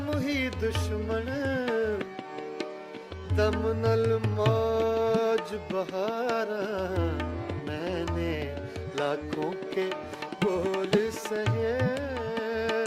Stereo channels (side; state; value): both; identical; correlation 1.00